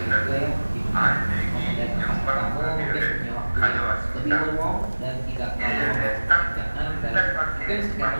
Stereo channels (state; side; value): inverted; both; correlation -1.00